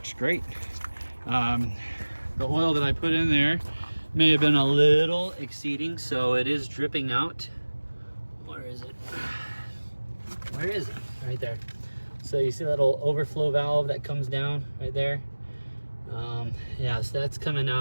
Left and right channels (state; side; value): inverted; both; correlation -1.00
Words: great. The oil that I put in there may have been a little exceeding, so it is dripping out. Where is it? Where is it? Right there. So you see that little overflow valve that comes down right there? Yeah, so that's coming